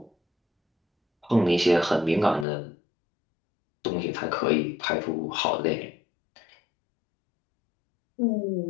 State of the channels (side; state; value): right; drops out; at 2.5 s